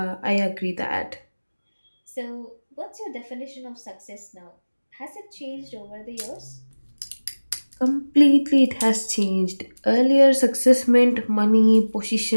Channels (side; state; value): both; inverted; correlation -1.00